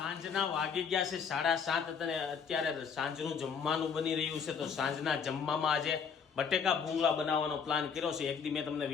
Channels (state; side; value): quieter; right; 6.4 dB